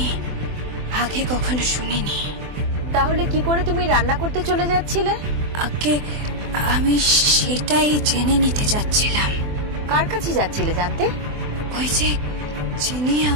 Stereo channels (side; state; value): left; late; 24 ms